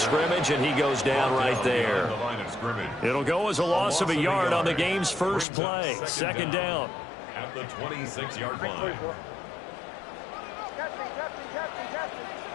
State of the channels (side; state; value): right; drops out; at 5.5 s